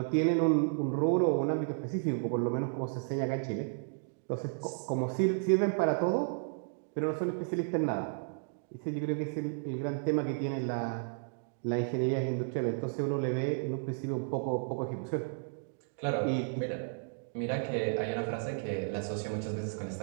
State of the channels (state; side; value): silent; left; digital silence